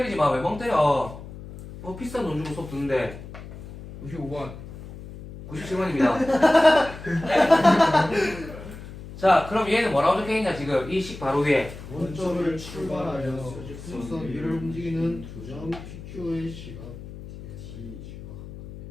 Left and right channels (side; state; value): left; noise; hum, 13 dB below the sound